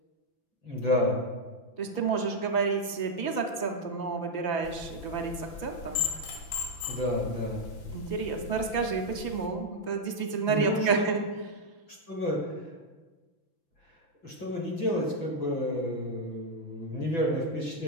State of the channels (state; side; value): late; right; 6.0 ms